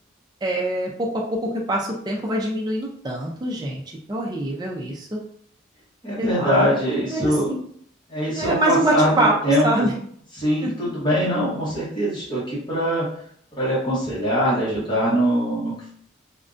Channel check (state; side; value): normal; both; correlation 0.39